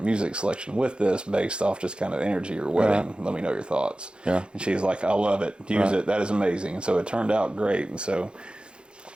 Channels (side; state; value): left; late; 0.053 ms